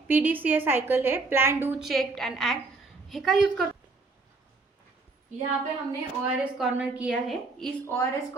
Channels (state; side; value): quieter; left; 3.7 dB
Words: PDCA साइकिल है, plan do check and act, हे का यूज कर। यहाँ पे हमने ORS कॉर्नर किया है। इस ORS